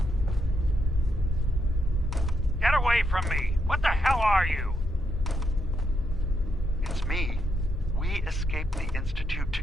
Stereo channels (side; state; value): both; normal; correlation 0.80